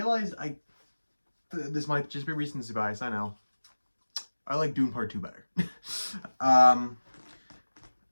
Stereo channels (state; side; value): inverted; both; correlation -1.00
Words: this might just be recency bias. I know. I like Dune Part 2 better. um,